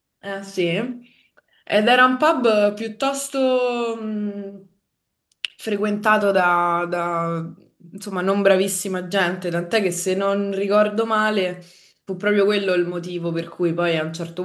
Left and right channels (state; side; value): identical; both; correlation 1.00